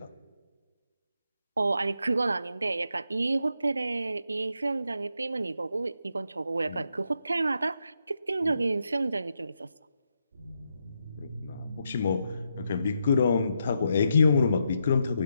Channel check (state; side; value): inverted; both; correlation -0.82